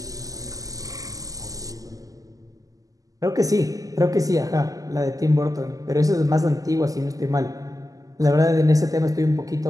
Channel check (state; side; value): late; left; 0.17 ms